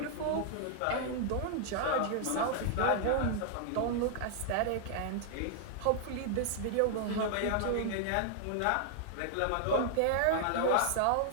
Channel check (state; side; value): different; both; correlation -0.01